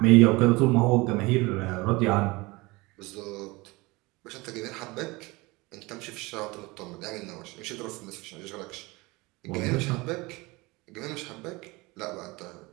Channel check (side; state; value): left; quieter; 23.3 dB